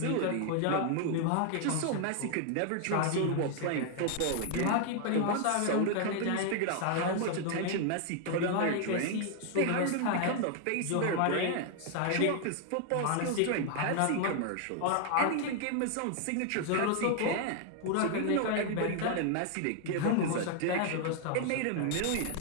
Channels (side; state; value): both; different; correlation 0.00